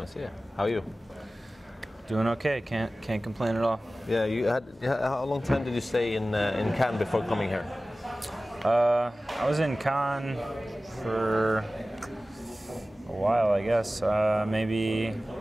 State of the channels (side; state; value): both; normal; correlation 0.96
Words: How are you? Doing okay. Can't complain at all. Yeah, how long time did you stay in Cannes before coming here? I was in Cannes for a while, I guess. Maybe